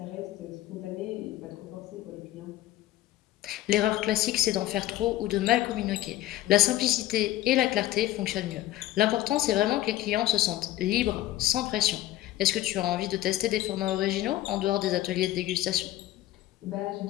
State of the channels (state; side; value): quieter; right; 14.7 dB